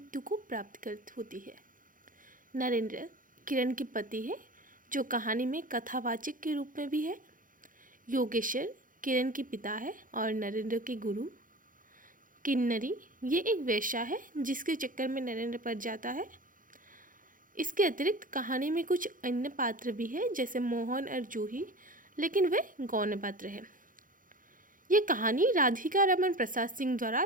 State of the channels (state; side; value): late; left; 0.39 ms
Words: को प्राप्त कर होती है। नरेंद्र किरण के पति है जो कहानी में कथावाचक के रूप में भी है। योगेश्वर किरण के पिता है और नरेंद्र के गुरु। किन्नरी ये एक वेश्या है जिसके चक्कर में नरेंद्र पड़ जाता है। इसके अतिरिक्त कहानी में कुछ अन्य पात्र भी हैं जैसे मोहन और जूही, लेकिन वे गौण पात्र हैं। ये कहानी राधिका रमन प्रसाद सिंह द्वारा